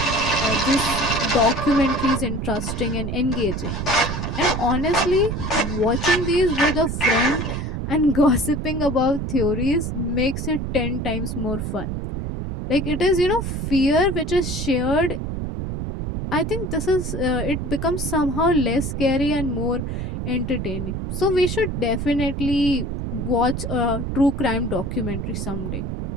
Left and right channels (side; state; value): right; noise; rumble, 3 dB below the sound